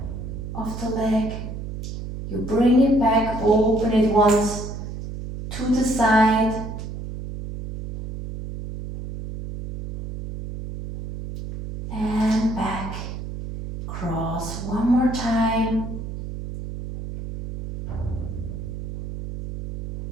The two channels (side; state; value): right; noise; hum, 8 dB below the sound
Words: of the leg. You bring it back, open it once to the side. And back. Cross one more time.